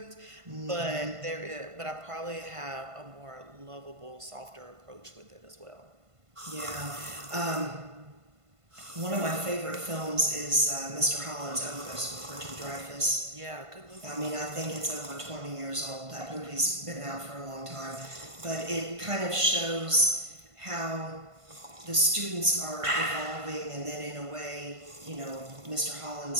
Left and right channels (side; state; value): left; late; 1.5 ms